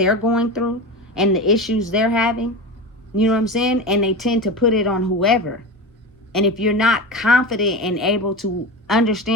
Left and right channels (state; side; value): normal; both; correlation 0.25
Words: going through and the issues they're having. You know what I'm saying? And they tend to put it on whoever. And if you're not confident and able to